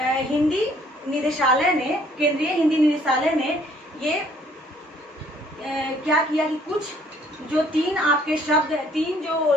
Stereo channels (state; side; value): normal; both; correlation 0.61